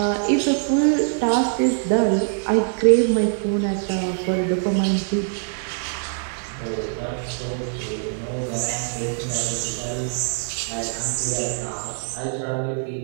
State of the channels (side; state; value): left; silent; 63 dB below the other